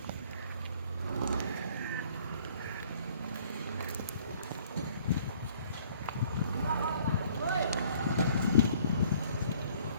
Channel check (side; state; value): both; inverted; correlation -0.57